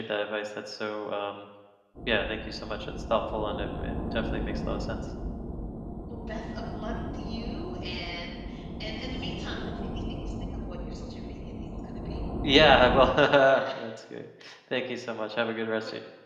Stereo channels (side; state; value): both; identical; correlation 1.00